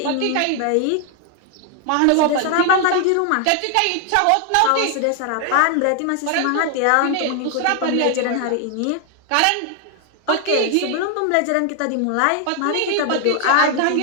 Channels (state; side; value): different; both; correlation 0.00